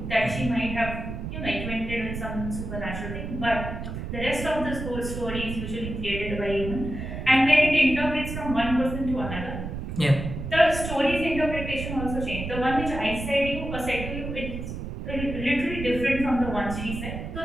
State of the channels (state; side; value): noise; right; rumble, 6 dB below the sound